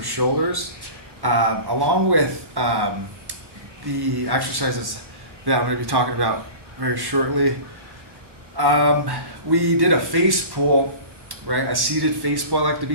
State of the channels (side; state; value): left; late; 1.1 ms